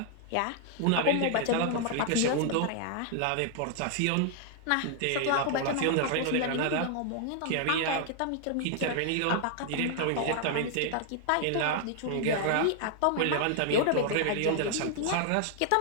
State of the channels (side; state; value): both; different; correlation 0.00